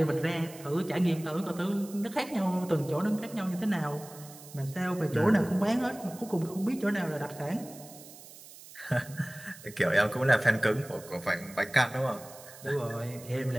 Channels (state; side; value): noise; right; hiss, 18 dB below the sound